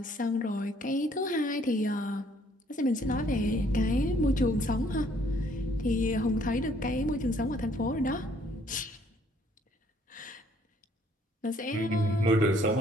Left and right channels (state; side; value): normal; both; correlation 0.63